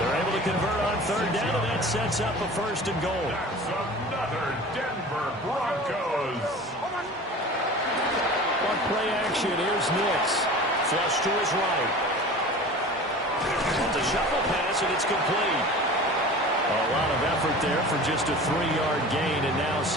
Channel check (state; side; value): normal; both; correlation 0.38